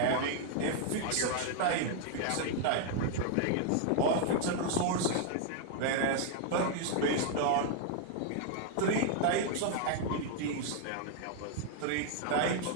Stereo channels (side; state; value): both; different; correlation 0.00